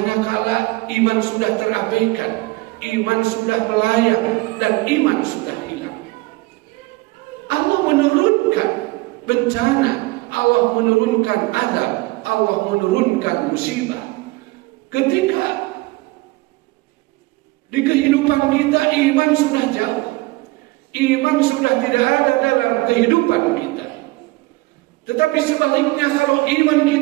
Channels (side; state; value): left; quieter; 21.9 dB